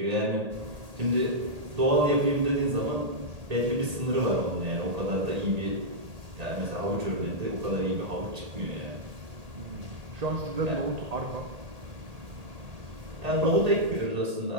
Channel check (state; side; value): late; left; 1.8 ms